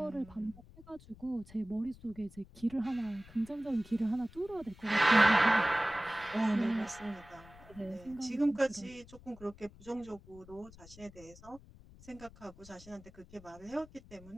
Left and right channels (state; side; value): noise; left; rumble, 21 dB below the sound